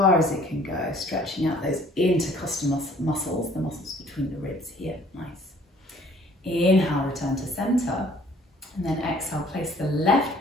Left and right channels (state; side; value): normal; both; correlation 0.56